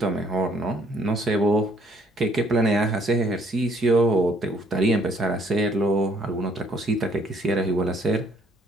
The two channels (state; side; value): normal; both; correlation 0.63